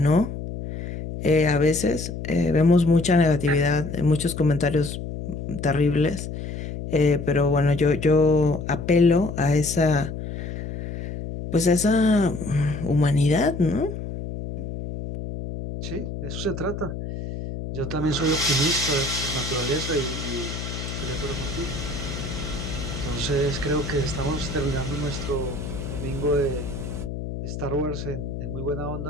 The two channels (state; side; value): noise; left; hum, 7 dB below the sound